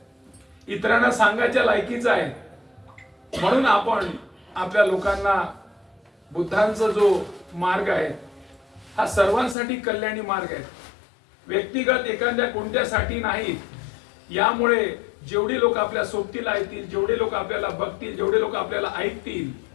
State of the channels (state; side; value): drops out; right; at 9.6 s